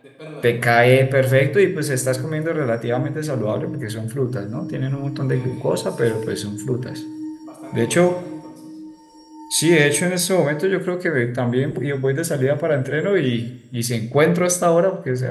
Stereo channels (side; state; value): both; identical; correlation 1.00